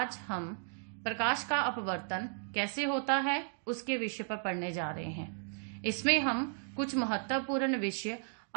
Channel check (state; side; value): silent; left; digital silence